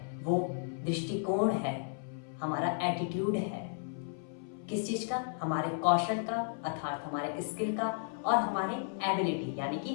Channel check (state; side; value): silent; right; 55 dB below the other